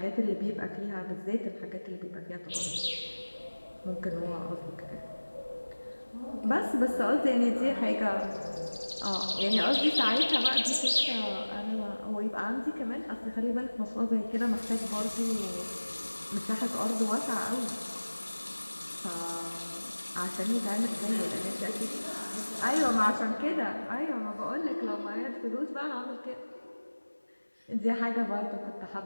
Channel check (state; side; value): inverted; both; correlation -1.00